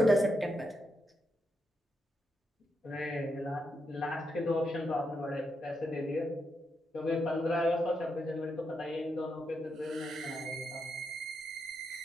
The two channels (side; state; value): both; normal; correlation 0.83